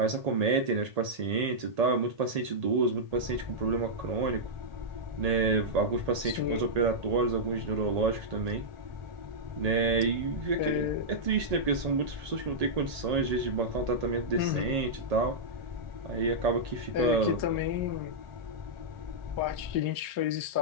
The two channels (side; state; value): left; late; 1.8 ms